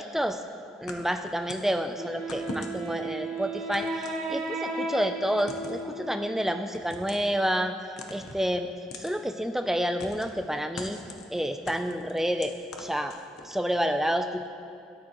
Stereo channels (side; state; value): both; normal; correlation 0.86